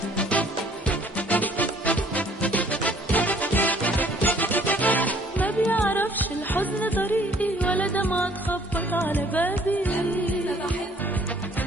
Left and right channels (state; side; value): normal; both; correlation 0.59